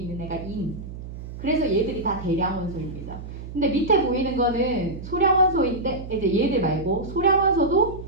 애가 인. 그래서 얘들이 다 대량 원소입니다. 근데 밑에 보이는 거는 소량 원소인데 이제 얘들 말고 소량 원소도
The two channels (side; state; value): right; noise; hum, 11 dB below the sound